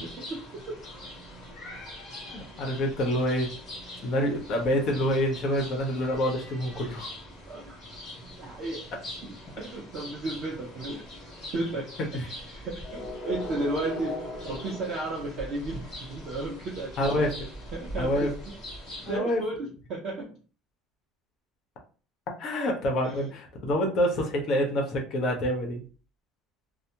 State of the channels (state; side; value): normal; both; correlation 0.49